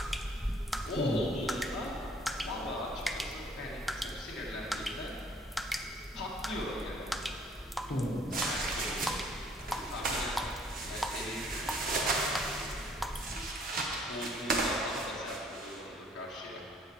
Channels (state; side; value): normal; both; correlation 0.60